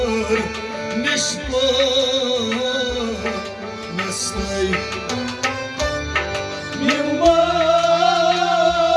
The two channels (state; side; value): identical; both; correlation 1.00